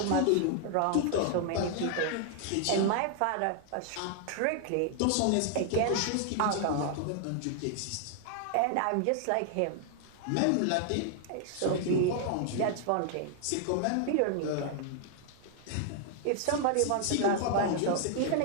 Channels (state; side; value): different; both; correlation 0.00